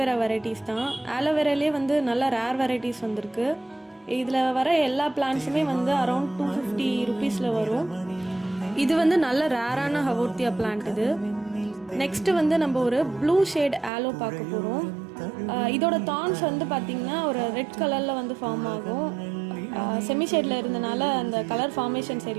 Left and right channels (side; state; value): left; drops out; at 13.9 s